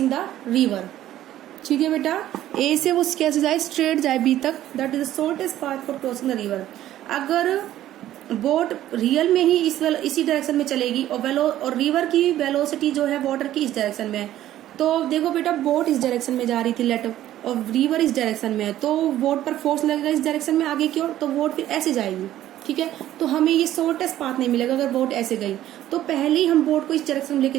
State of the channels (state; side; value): quieter; left; 13.1 dB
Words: the river. ठीक है बेटा, ए से वो कैसे जाए, स्ट्रेट जाए बी तक। That is the shortest path for crossing the river. अगर बोट रियल में ही इसी डायरेक्शन में चलेगी और रिवर की वेलोसिटी जो है वाटर की इस डायरेक्शन में है, तो देखो बेटा बोट इस डायरेक्शन में जा रही थी लेट, और रिवर इस डायरेक्शन में है, तो बोट पर फोर्स लगेगा इस डायरेक्शन में आगे की ओर, तो बोट फिर ऐसे जाएगी। ठीक है, तो हमें ये शॉर्टेस्ट पाथ नहीं मिलेगा अगर बोट ऐसे गई। तो पहले ही हम बोट को इस डायरेक्शन में लेके